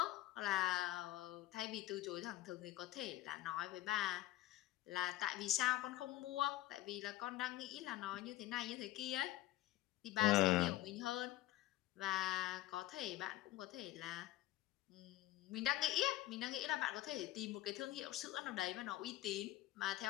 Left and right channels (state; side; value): quieter; right; 15.9 dB